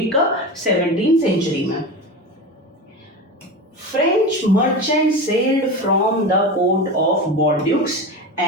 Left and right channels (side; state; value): both; normal; correlation 0.26